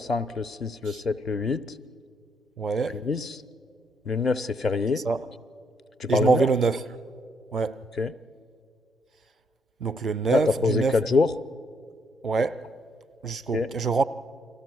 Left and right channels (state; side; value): normal; both; correlation 0.72